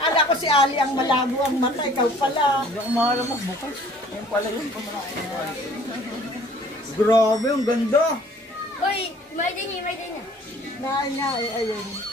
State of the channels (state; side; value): normal; both; correlation 0.54